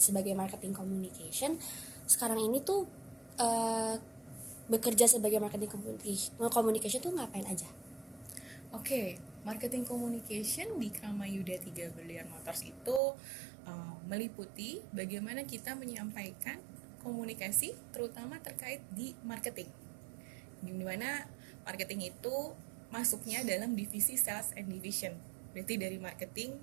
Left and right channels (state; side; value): drops out; left; at 13.0 s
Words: marketing communication, sekarang ini tuh bekerja sebagai marketing communication tuh ngapain aja? Oke, marketing communication di Kramayuda 3 Brilliant Motors itu meliputi bagaimana kita menyampaikan komunikasi terutama terkait di marketing. Dimana marketing itu masuknya dalam divisi sales and division. Berarti dari